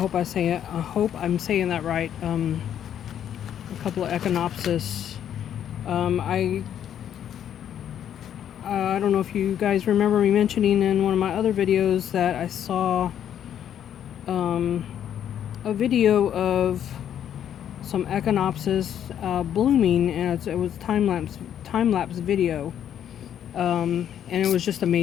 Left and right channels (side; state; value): right; quieter; 9.8 dB